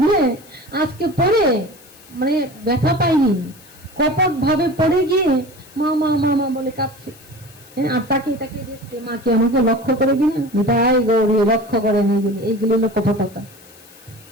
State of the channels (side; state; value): left; noise; hiss, 24 dB below the sound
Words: আজকে পড়ে মানে ব্যথা পাইনি, কপট ভাবে পড়ে গিয়ে মা মা মা মা বলে কাঁদছে, আর তাকে তাকে দেখছে, মা কি আমাকে লক্ষ্য করে কিনা, তাই গৌরী লক্ষ্য করে এইগুলি হলো কপটতা,